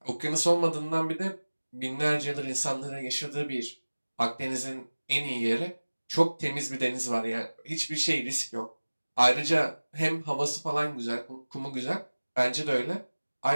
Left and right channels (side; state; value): both; inverted; correlation -1.00